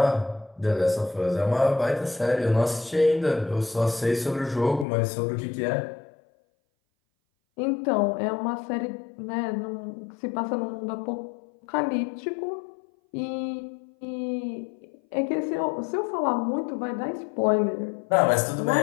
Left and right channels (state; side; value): drops out; right; at 4.9 s